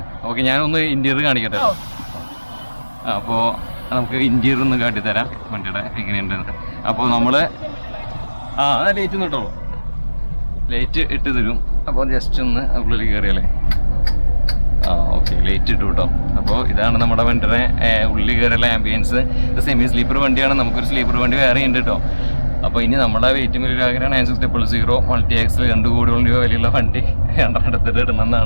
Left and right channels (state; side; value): inverted; both; correlation -1.00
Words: ഓക്കെ, ഞാനൊന്ന് ഇൻറ്റീരിയർ കാണിക്കട്ടെ. അപ്പോൾ നമുക്ക് ഇൻറ്റീരിയർ ഒന്ന് കാട്ടിത്തരാം വണ്ടിയുടെ എങ്ങനെയുണ്ടെന്ന്. അപ്പോൾ നമ്മൾ ലൈറ്റ് ഒന്ന് ഇട്ടോളൂ. ലൈറ്റ് ഇട്ട് തരും. അപ്പോൾ ജസ്റ്റ് ഒന്ന് ഉള്ളിൽ കയറിയല്ലേ. ഓക്കെ, ലൈറ്റ് ഇട്ടു കേട്ടോ. അപ്പോൾ ഇതാണ് നമ്മുടെ വണ്ടിയുടെ ഉള്ളിൽ കയറിയുള്ള ആംബിയൻസ്. ഇത് സെമി സ്ലീപ്പർ വണ്ടിയാണ്. നമുക്കൊരു സ്ലീപ്പർ വണ്ടി വേറെ ഉണ്ട് കേട്ടോ. അപ്പോൾ ഇനി നമ്മുടെ വെയിറ്റ് വലിയൊരു ആഗ്രഹം 96000 മൾട്ടി എക്സിൽ 2 കോടിയോളം രൂപ വിലയുള്ള വണ്ടി എടുത്തിട്ട്